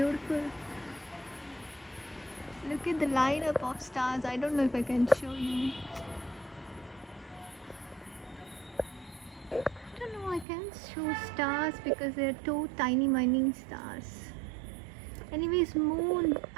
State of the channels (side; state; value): left; drops out; at 10.5 s